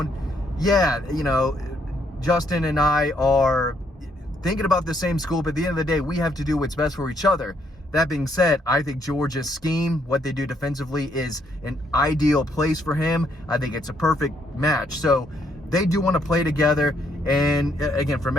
yeah, Justin and I are thinking about the same school, but at the end of the day, we have to do what's best for each other. That being said, I think Georgia's scheme, what they do defensively, is an ideal place for him. I think it's a perfect match. So they do want to play together. And again, from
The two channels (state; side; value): normal; both; correlation 0.72